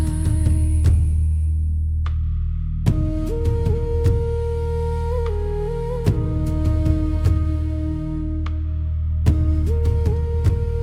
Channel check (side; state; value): both; identical; correlation 1.00